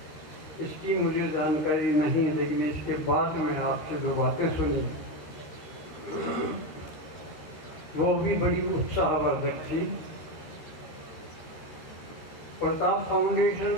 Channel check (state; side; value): late; right; 13 ms